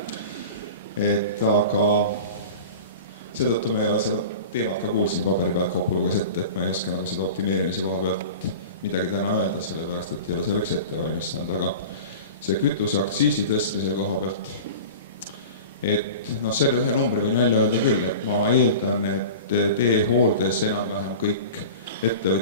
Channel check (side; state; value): both; inverted; correlation -0.35